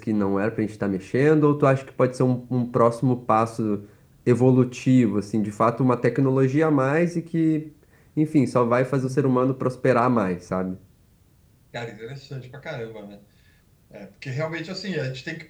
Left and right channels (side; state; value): both; identical; correlation 1.00